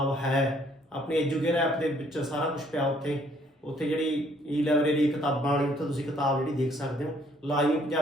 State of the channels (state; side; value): normal; both; correlation 0.64